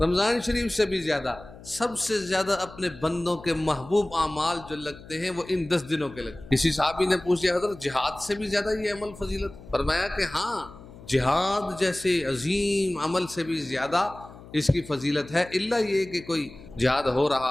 شریف سے بھی زیادہ، سب سے زیادہ اپنے بندوں کے محبوب اعمال جو لگتے ہیں وہ ان 10 دنوں کے لگتے ہیں۔ کسی صحابی نے پوچھا، حضرت جہاد سے بھی زیادہ یہ عمل فضیلت؟ فرمایا کہ ہاں، جہاد جیسے عظیم عمل سے بھی زیادہ اس کی فضیلت ہے، الا یہ کہ کوئی جہاد ہو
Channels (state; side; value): noise; left; hum, 18 dB below the sound